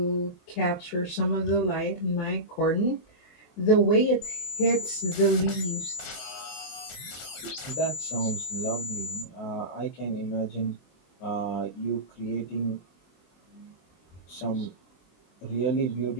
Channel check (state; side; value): late; right; 23 ms